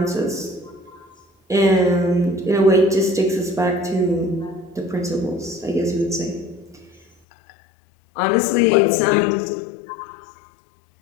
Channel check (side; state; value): right; drops out; at 7.1 s